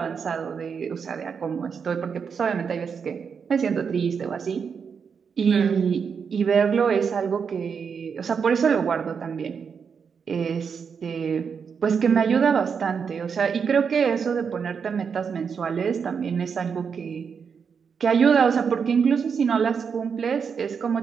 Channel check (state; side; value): quieter; left; 6.3 dB